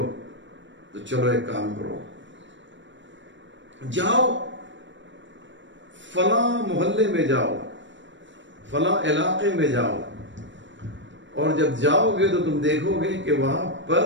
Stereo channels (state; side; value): late; left; 0.54 ms